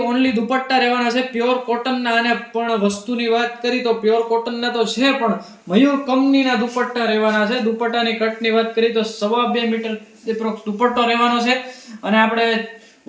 ઓનલી દુપટ્ટા રહેવાના છે પ્યોર કોટનના. અને પણ વસ્તુની વાત કરી તો પ્યોર કોટનના તો છે, પણ મયુર કંપનીના દુપટ્ટા રહેવાના છે. દુપટ્ટાની કટની વાત કરી તો 2.5 મીટર એપ્રોક્સ દુપટ્ટો રહેવાનો છે. અને આપણે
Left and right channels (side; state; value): both; identical; correlation 1.00